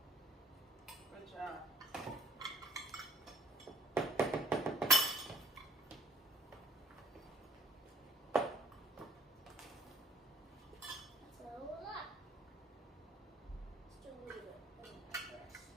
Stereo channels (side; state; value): both; normal; correlation 0.59